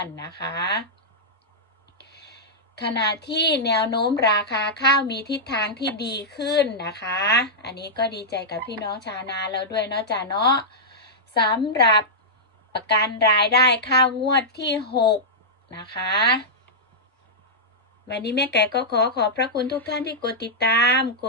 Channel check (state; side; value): normal; both; correlation -0.09